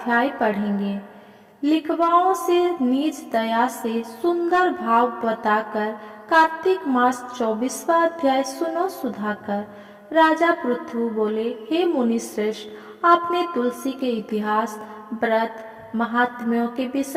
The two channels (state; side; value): identical; both; correlation 1.00